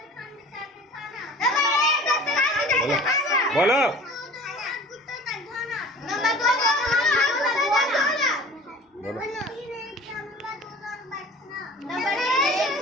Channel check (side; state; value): both; normal; correlation 0.43